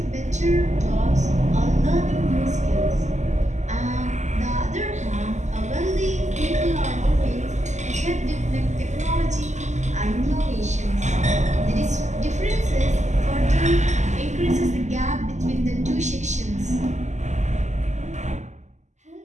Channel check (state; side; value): late; left; 0.34 ms